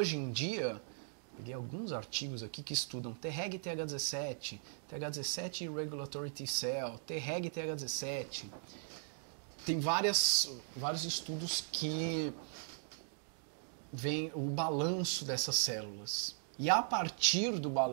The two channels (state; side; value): silent; left; digital silence